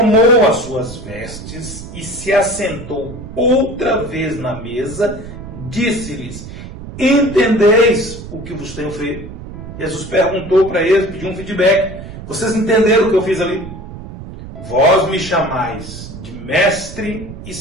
as suas vestes e se assentou outra vez na mesa, disse-lhes: entendeis o que vos tenho feito? Jesus perguntou para eles, pediu um feedback: vocês entenderam o que eu fiz ali? Vós me chamais de mestre e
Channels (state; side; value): noise; right; rumble, 12 dB below the sound